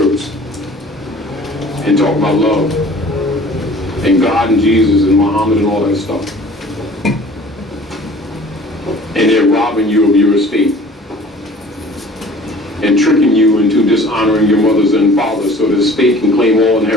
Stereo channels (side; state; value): both; normal; correlation 0.48